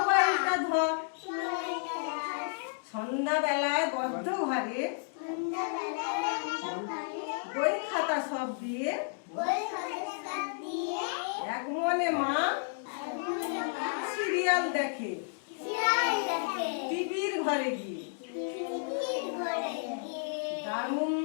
ধর। সন্ধ্যাবেলায় বদ্ধ ঘরে বই খাতা সব দিয়ে এক মনে মা সিরিয়াল দেখে টিভির ঘরে গিয়ে। দারুণ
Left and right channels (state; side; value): silent; right; digital silence